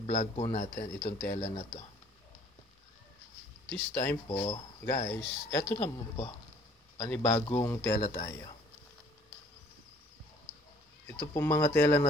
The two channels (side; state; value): both; normal; correlation 0.57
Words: po natin, itong tela na to. This time po, guys, ito naman po. Panibagong tela tayo. Ito po mga tela